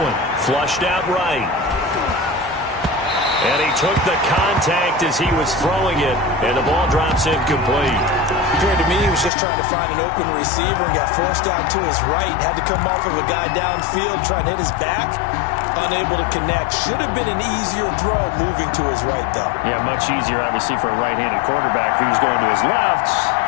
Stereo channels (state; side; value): drops out; right; at 9.3 s